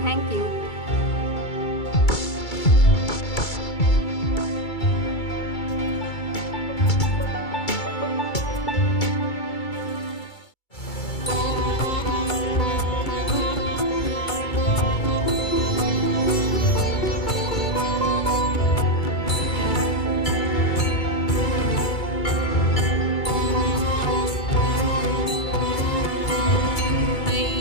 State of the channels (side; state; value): right; late; 2.3 ms